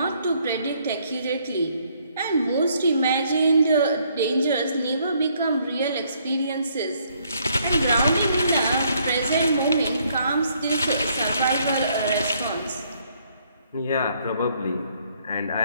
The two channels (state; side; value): inverted; both; correlation -0.68